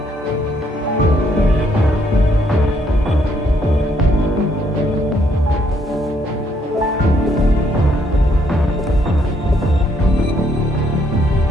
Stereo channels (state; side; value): normal; both; correlation 0.70